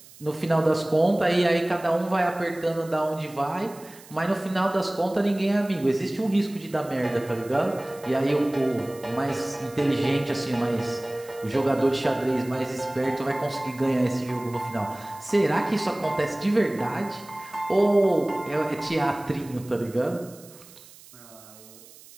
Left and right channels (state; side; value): noise; right; hiss, 21 dB below the sound